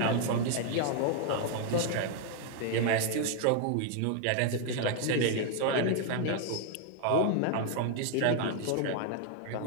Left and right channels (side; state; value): both; different; correlation 0.00